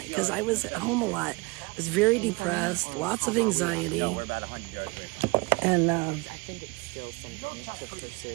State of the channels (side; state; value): left; quieter; 26.0 dB